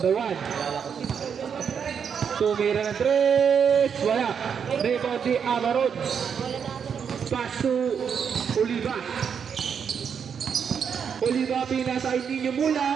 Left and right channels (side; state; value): left; quieter; 7.1 dB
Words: 1. Tumira ng 3. Wala. Rebound si Amarod. Pass to Oliva. Pinasa kay Ninyo